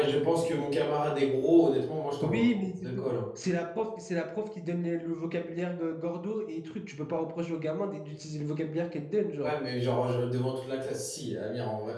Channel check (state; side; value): identical; both; correlation 1.00